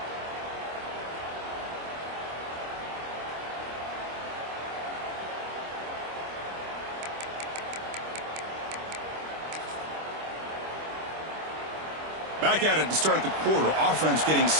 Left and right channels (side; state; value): left; late; 25 ms